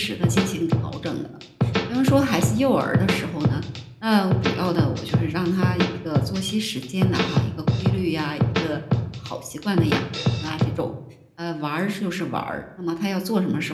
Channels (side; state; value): both; identical; correlation 1.00